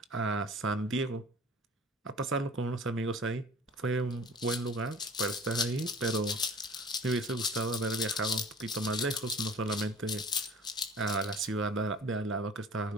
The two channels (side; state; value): both; normal; correlation 0.46